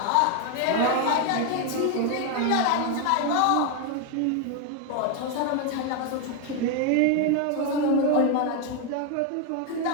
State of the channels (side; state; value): both; different; correlation 0.01